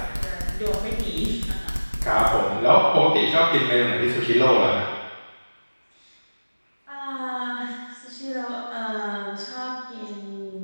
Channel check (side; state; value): both; inverted; correlation -1.00